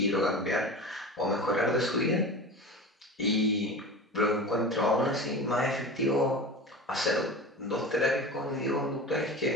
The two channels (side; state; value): both; normal; correlation 0.31